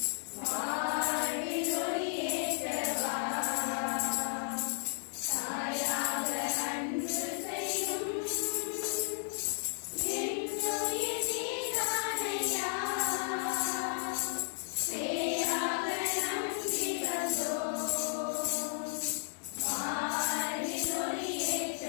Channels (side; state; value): right; silent; digital silence